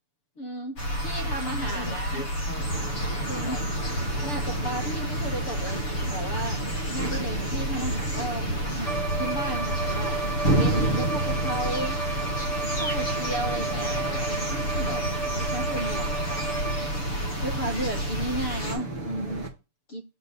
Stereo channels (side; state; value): right; late; 6.9 ms